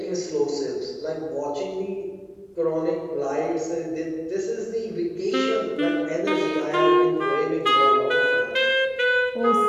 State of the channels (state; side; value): identical; both; correlation 1.00